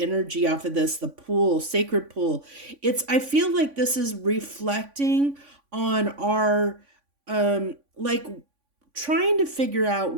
off of this, the pool, sacred pool. I feel like this is reflecting on our, like, trying to figure out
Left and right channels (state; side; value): late; left; 3.5 ms